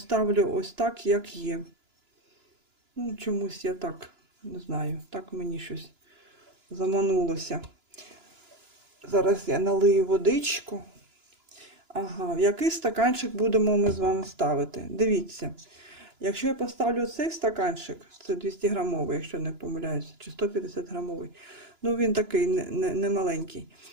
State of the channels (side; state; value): left; late; 2.9 ms